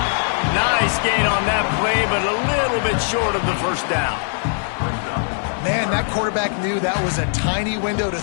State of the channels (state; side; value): silent; right; 65 dB below the other